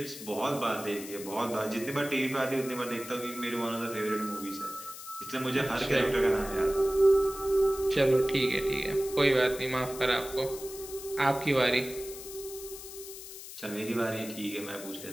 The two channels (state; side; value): noise; left; hiss, 12 dB below the sound